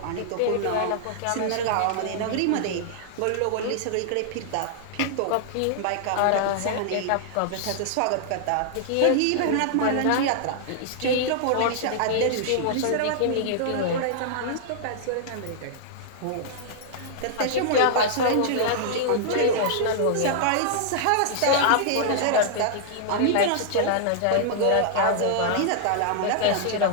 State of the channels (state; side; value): different; both; correlation -0.01